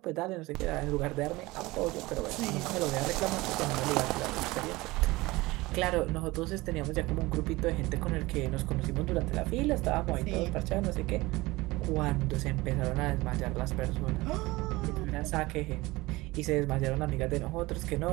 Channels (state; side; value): quieter; left; 21.0 dB